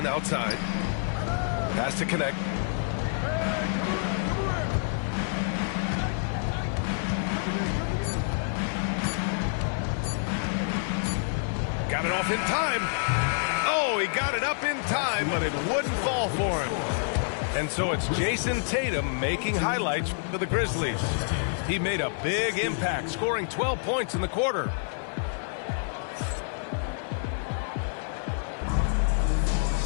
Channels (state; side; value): silent; right; 58 dB below the other